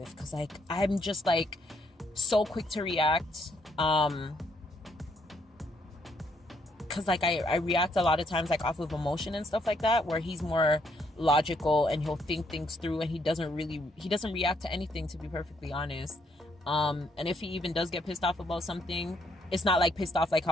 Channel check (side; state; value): both; normal; correlation 0.71